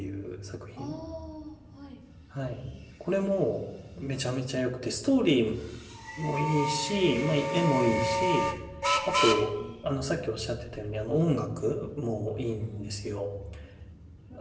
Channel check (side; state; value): both; identical; correlation 1.00